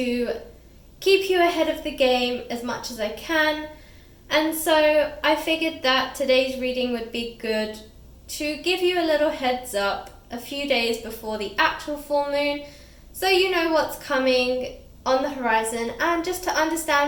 keep you ahead of the game as much as I can. And so I figured that today's reading would be good to give you a little heads up a few days before the actual full moon, so you know what's coming on the horizon and just to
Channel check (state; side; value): identical; both; correlation 1.00